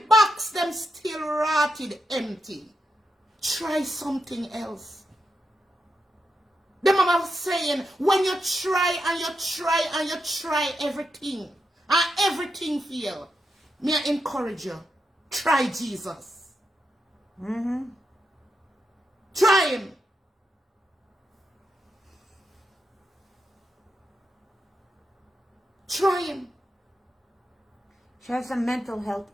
box them still rotted empty, try something else. The mama was saying when you try and you try and you try everything and everything fail, me I encourage you, try Jesus. Try him. Try him. She has some mental health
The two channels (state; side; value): normal; both; correlation 0.85